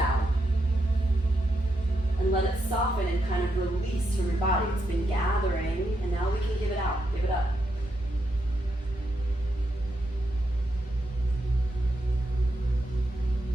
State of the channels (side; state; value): both; normal; correlation 0.82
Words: And let it soften and kind of release from your body. It's been gathering, and now we can give it out. Give it up.